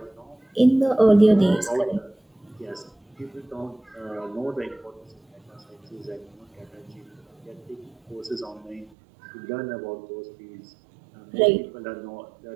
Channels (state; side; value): drops out; left; at 8.9 s